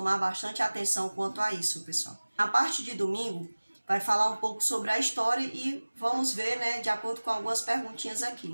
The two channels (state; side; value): inverted; both; correlation -1.00